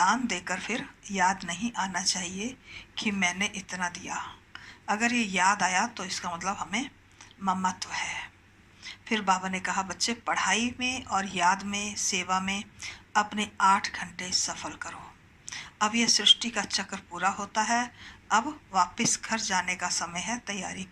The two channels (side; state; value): both; identical; correlation 1.00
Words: देकर फिर याद नहीं आना चाहिए कि मैंने इतना दिया। अगर ये याद आया तो इसका मतलब हमें ममत्व है। फिर बाबा ने कहा बच्चे पढ़ाई में और याद में सेवा में अपने 8 घंटे सफल करो। अब यह सृष्टि का चक्र पूरा होता है। अब वापस घर जाने का समय है, तैयारी